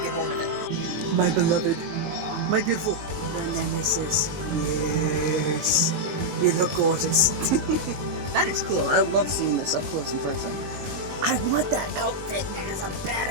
get bored of it. My beloved, my beautiful nemesis. Yes, you look gorgeous. That is cool. I love seeing this up close and personal. I want that outfit, man. It's a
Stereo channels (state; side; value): late; left; 21 ms